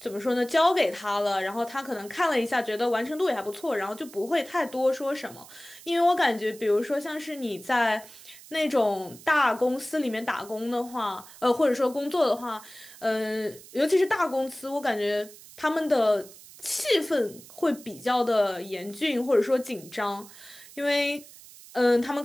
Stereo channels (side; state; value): right; noise; hiss, 19 dB below the sound